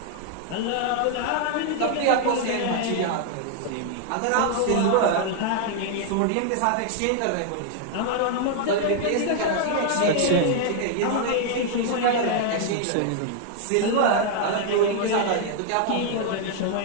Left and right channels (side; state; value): both; different; correlation 0.00